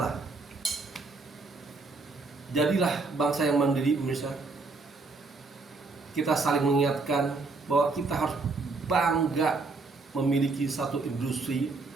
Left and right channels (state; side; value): quieter; left; 3.8 dB